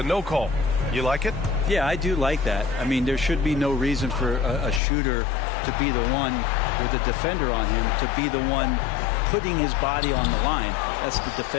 no call. You like it? Yeah, I do like that. I mean, there should be no reason for a shooter to be the one with a defender on him, to be the one putting his body on the line. That's the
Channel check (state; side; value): drops out; right; at 4.8 s